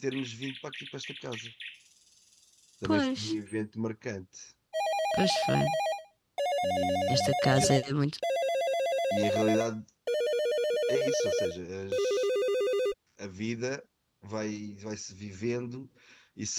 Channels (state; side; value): identical; both; correlation 1.00